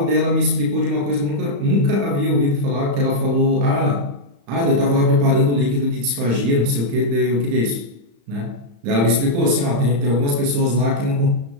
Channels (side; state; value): left; late; 35 ms